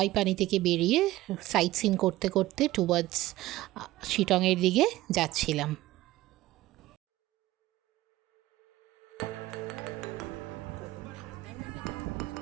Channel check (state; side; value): quieter; left; 16.8 dB